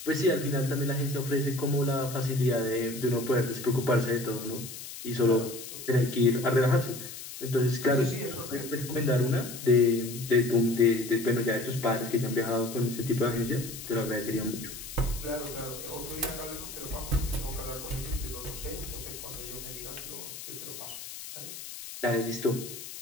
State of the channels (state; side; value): noise; left; hiss, 11 dB below the sound